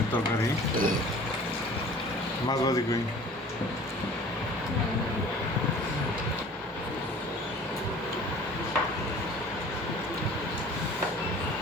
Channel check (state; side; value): normal; both; correlation 0.46